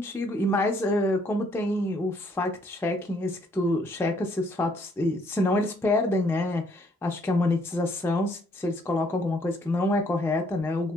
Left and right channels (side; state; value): both; normal; correlation 0.67